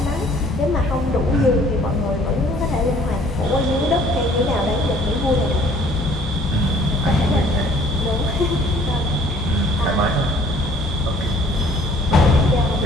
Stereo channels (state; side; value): normal; both; correlation 0.56